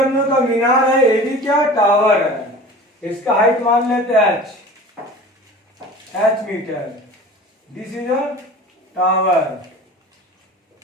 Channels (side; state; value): both; normal; correlation 0.39